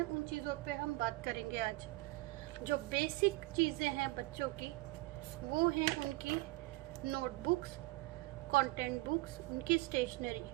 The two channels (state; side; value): quieter; left; 21.1 dB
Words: उन चीज़ों पे हम बात करेंगे आज। जो बेसिक चीज़ें हैं बच्चों की वो हैं उनकी नोटबुक्स, कंटेंट बुक्स, उनकी स्टेशनरी।